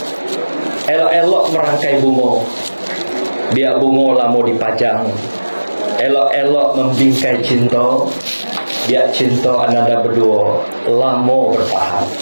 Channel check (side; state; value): both; inverted; correlation -1.00